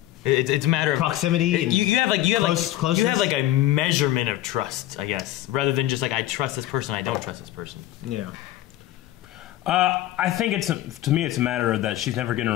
It's a matter of proximity. And you have closeness? like a measurement of trust, I guess, rather than just like I trust this person, I don't trust this person. Yeah. I think to me it's a matter of that she's never given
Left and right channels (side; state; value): right; quieter; 14.8 dB